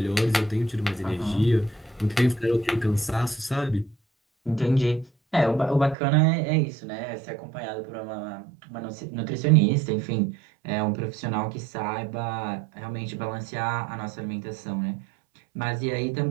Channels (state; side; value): drops out; left; at 6.0 s